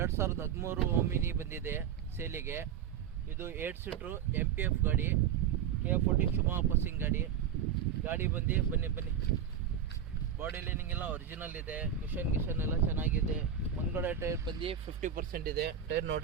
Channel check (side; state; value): left; quieter; 8.5 dB